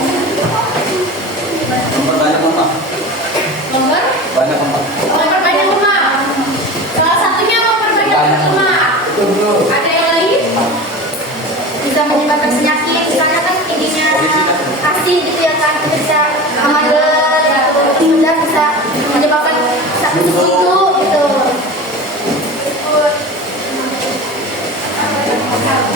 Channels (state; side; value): normal; both; correlation 0.32